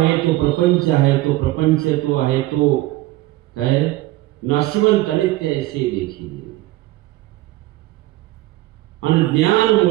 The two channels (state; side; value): quieter; left; 17.7 dB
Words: तो प्रपंच आहे, तो प्रपंच तो आहे तो काय नाशवंत अनित्य ऐसे देखील. आणि ज्ञान